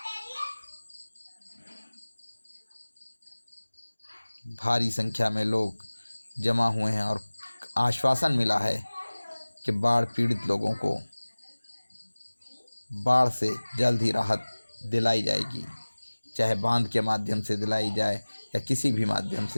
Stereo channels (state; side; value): inverted; both; correlation -1.00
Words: भारी संख्या में लोग जमा हुए हैं और आश्वासन मिला है कि बाढ़ पीड़ित लोगों को बाढ़ से जल्द ही राहत दिलाई जाएगी, चाहे बांध के माध्यम से दिलाई जाए या किसी भी माध्यम